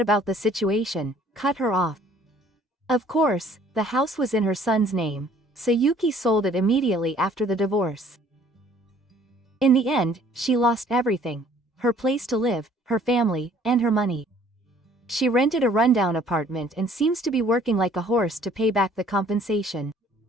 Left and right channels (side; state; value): both; normal; correlation 0.57